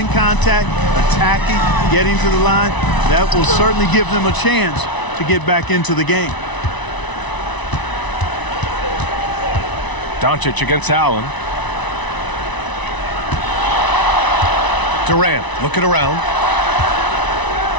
contact, attacking, getting to the line. That will certainly give them a chance to get back into the game. Doncic against Allen. Durant looking around.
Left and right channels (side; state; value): right; late; 1.0 ms